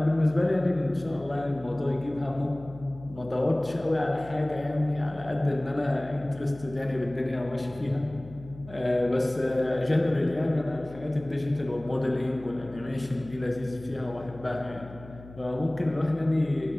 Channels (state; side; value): noise; left; hum, 18 dB below the sound